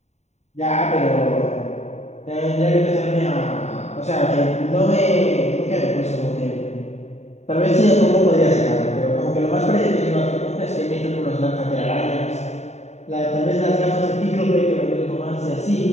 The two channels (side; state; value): right; late; 0.32 ms